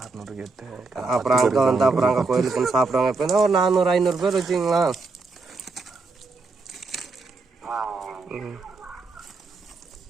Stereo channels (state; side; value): quieter; left; 3.9 dB